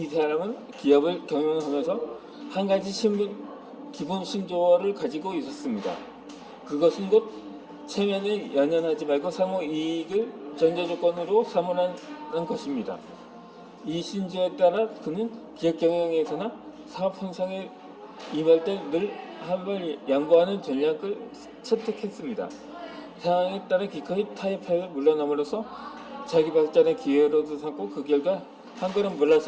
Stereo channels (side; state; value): both; identical; correlation 1.00